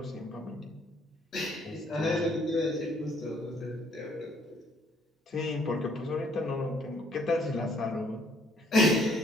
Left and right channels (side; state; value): both; normal; correlation 0.64